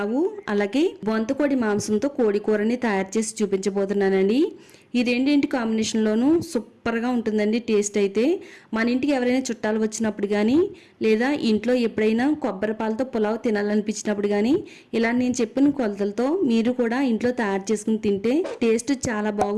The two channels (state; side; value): identical; both; correlation 1.00